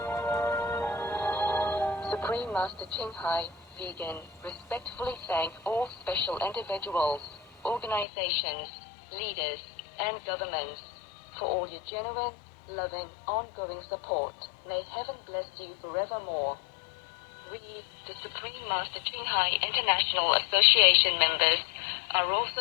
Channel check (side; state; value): right; drops out; at 8.1 s